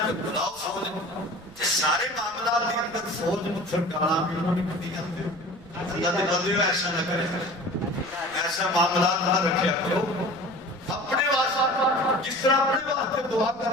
بلاؤ فوج. سارے معاملات کے اندر فوج پتھر ڈالا بھی انہوں نے کبھی کرتے. اللہ کے بندے ایسا نہ کرے، ایسا معاملات نہ رکھیا کرو. اپنے واسطے جس طرح اپنے واسطے دعا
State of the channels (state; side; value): noise; right; rumble, 24 dB below the sound